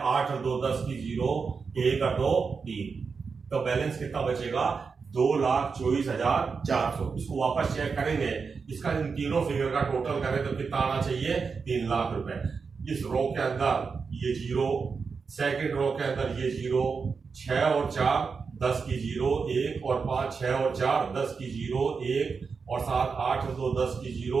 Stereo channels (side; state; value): left; quieter; 5.2 dB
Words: 8 और 2 10 की 0 1 और 2 3। तो बैलेंस कितना बचेगा? 2,24,400। इसको वापस चेक करेंगे, इसका इन तीनों फिगर का टोटल करें तो कितना आना चाहिए? 3 लाख रुपए। इस रो के अंदर ये 0, सेकंड रो के अंदर ये 0, 6 और 4 10 की 0 1 और 5 6 और 4 10 की 0 1 और 7 8 और 2 10 की 0